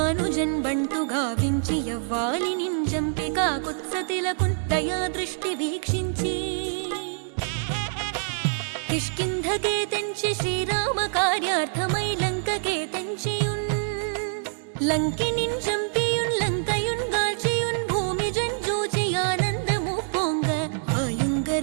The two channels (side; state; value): left; silent; 61 dB below the other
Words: బంటు గావించి యవ్వాలి నింజంపి కాకుత్సతిలకున్ దయా దృష్టి వీక్షించి కిష్కింధకే తెంచి శ్రీరామ కార్యార్థమై లంకకే తెంచియున్ లంకినిన్ చంపియున్ లంకయున్ గాల్చియున్ భూమిజన్ జూచి ఆనందము పొంగ